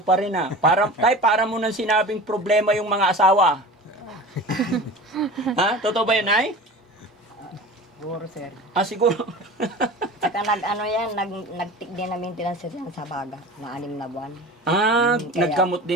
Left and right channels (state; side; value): normal; both; correlation 0.36